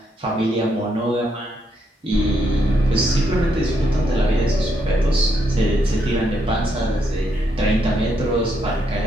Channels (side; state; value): both; normal; correlation 0.77